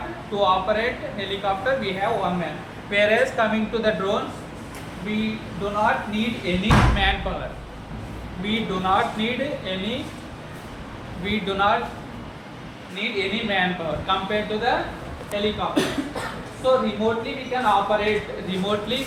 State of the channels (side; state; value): both; identical; correlation 1.00